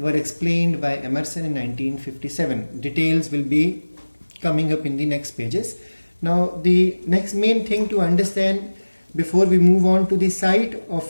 explained by Emerson in 1957. Details will be coming up in the next pages. Now the next main thing to understand before we move on to the site of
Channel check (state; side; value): inverted; both; correlation -1.00